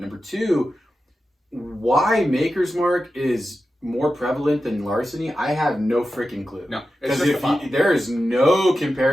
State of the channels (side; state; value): both; normal; correlation 0.92